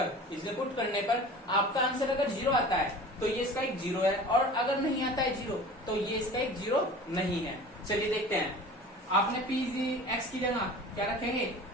इसमें पुट करने पर आपका आंसर अगर जीरो आता है तो ये इसका एक जीरो है, और अगर नहीं आता है जीरो तो ये इसका एक जीरो नहीं है। चलिए देखते हैं। आपने p x की जगह क्या रखेंगे?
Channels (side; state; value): both; normal; correlation 0.40